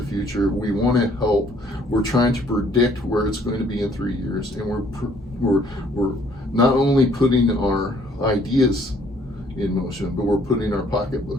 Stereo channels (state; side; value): normal; both; correlation 0.62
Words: future. We want to help. We're trying to predict where it's going to be in 3 years, and we're not only putting our ideas in motion, but we're putting our